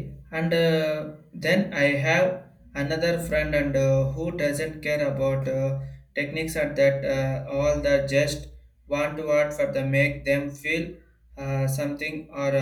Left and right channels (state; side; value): identical; both; correlation 1.00